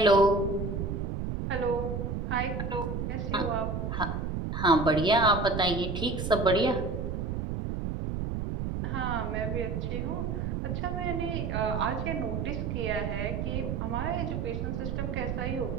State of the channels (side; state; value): right; noise; rumble, 2 dB below the sound